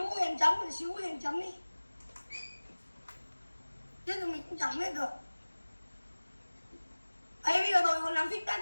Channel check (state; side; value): inverted; both; correlation -1.00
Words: Xíu Huyền chấm đi. Chứ tụi mình cũng chấm hết được. Ê, bây giờ tôi còn làm feedback